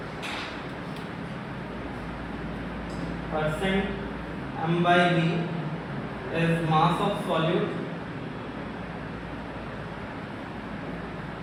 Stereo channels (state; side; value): identical; both; correlation 1.00